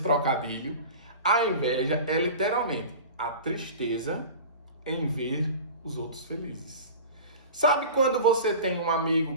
trocadilho? A inveja é literalmente a tristeza em ver os outros felizes. Sabe quando você tem um amigo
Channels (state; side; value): inverted; both; correlation -0.35